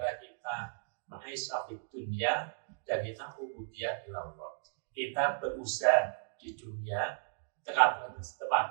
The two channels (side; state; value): left; silent; digital silence